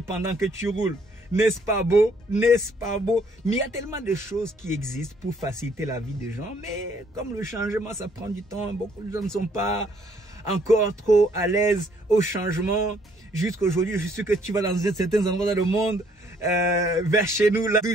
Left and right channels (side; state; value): both; normal; correlation 0.65